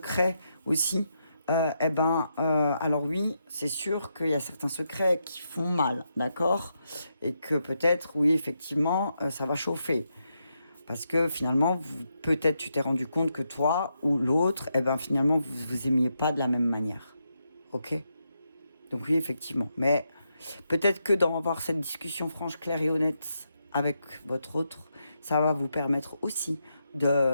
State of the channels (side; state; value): both; inverted; correlation -0.82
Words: aussi. Alors oui, c'est sûr qu'il y a certains secrets qui font mal, d'accord? Et que peut-être, oui, effectivement, ça va chauffer. Parce que finalement, peut-être tu t'es rendu compte que toi ou l'autre, finalement, vous aimiez pas de la même manière. Ok? Donc oui, effectivement. Mais peut-être que d'avoir cette discussion franche, claire et honnête avec votre autre, ça va vous permettre aussi